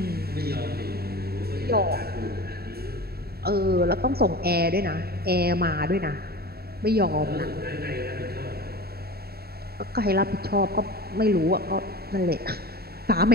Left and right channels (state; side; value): late; left; 0.45 ms